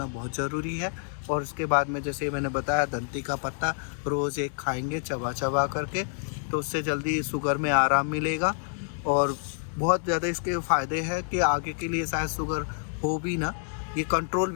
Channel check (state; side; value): silent; right; 59 dB below the other